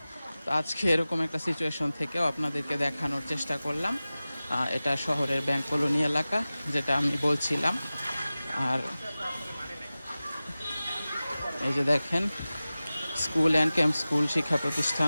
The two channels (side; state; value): both; inverted; correlation -0.97